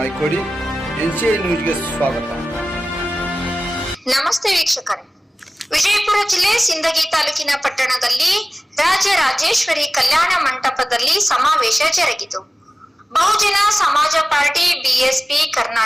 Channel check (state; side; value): normal; both; correlation 0.97